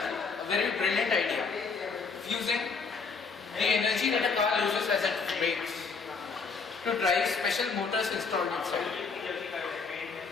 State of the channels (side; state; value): right; quieter; 4.9 dB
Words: a very brilliant idea, using the energy that a car uses as it brakes to drive special motors installed inside.